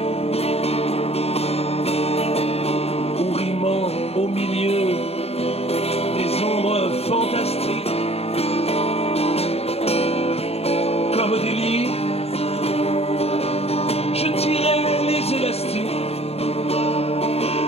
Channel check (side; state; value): right; late; 0.29 ms